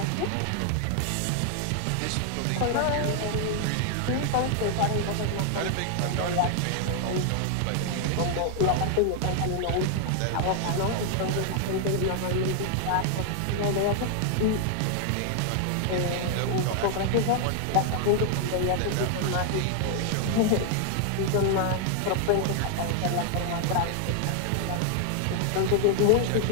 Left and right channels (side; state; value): both; different; correlation 0.00